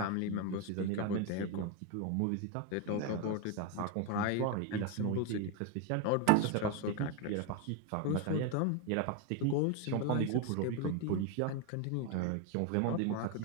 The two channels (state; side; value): different; both; correlation 0.02